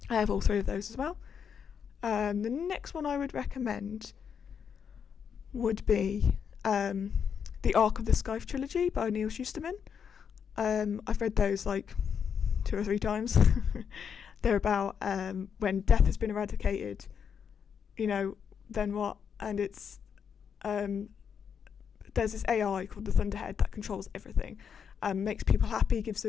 I have all three of those as well. The next one I would recommend would be the Ark of the Scythe trilogy by Neil Shusterman. I've read those like 2 or 3 times. They're about when death has been eradicated, then what? And it's there's this AI called the Thunderhead that controls everything, makes people happy, gives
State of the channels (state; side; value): quieter; right; 7.2 dB